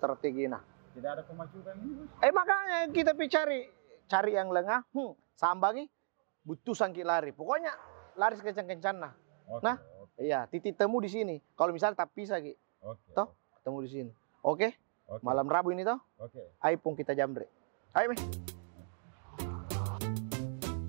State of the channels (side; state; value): left; silent; digital silence